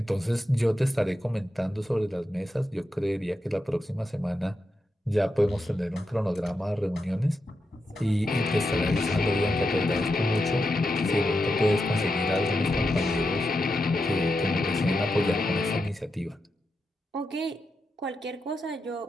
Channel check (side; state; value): both; normal; correlation 0.87